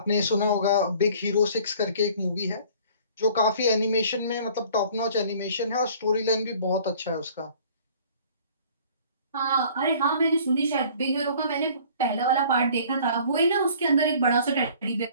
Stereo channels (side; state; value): both; inverted; correlation -0.51